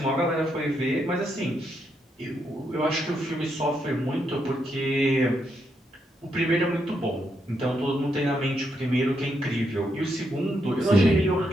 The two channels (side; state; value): both; normal; correlation 0.79